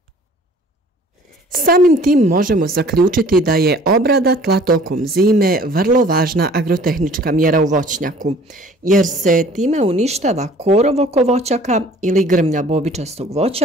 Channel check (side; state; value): both; normal; correlation 0.51